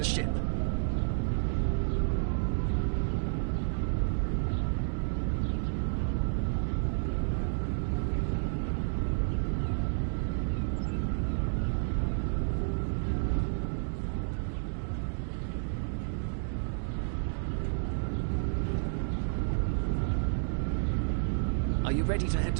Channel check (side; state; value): left; silent; digital silence